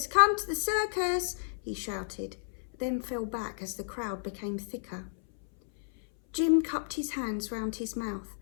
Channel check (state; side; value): silent; right; 56 dB below the other